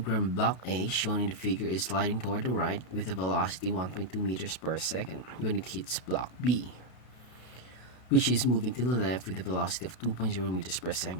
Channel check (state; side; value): late; right; 31 ms